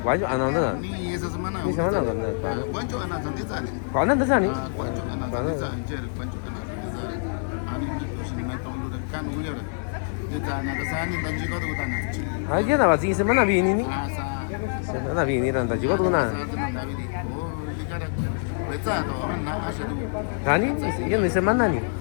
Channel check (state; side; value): silent; right; digital silence